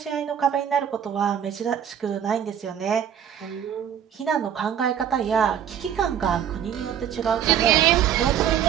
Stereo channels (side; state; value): left; quieter; 9.1 dB